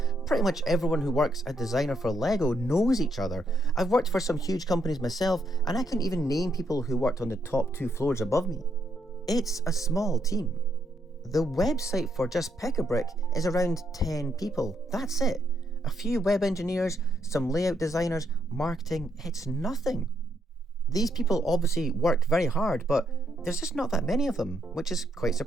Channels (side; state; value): both; normal; correlation 0.76